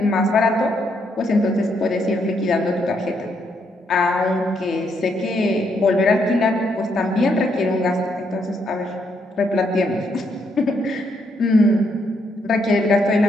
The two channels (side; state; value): both; normal; correlation 0.75